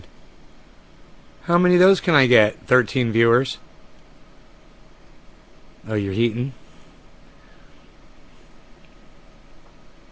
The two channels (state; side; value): identical; both; correlation 1.00